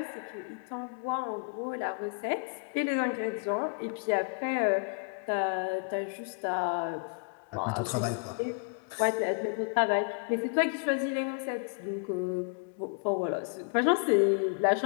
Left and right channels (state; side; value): quieter; right; 39.9 dB